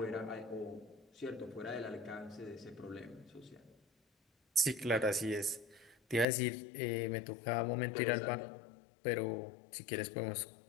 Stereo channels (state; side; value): drops out; right; at 6.2 s